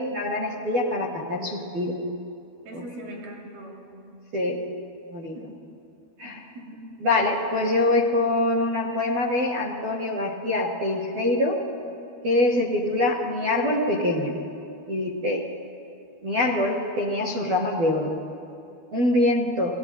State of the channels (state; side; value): late; left; 12 ms